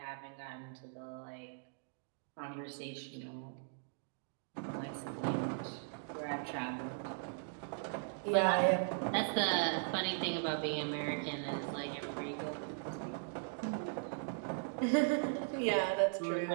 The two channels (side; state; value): left; silent; digital silence